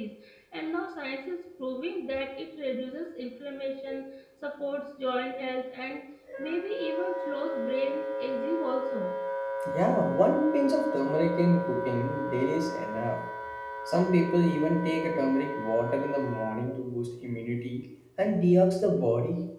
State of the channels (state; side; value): identical; both; correlation 1.00